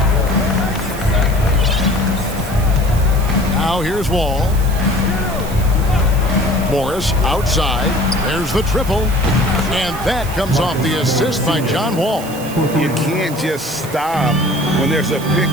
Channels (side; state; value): right; noise; hiss, 14 dB below the sound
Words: Now here's Wall. Morris outside. There's the triple. And that comes off the assist by John Wall. You can't just stop when there's a pick